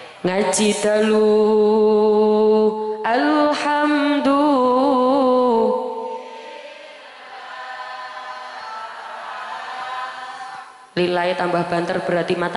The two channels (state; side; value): identical; both; correlation 1.00